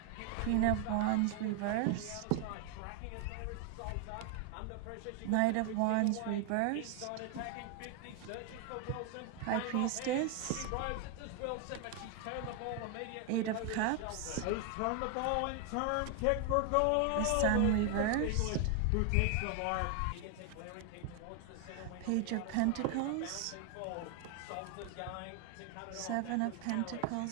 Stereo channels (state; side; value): different; both; correlation 0.01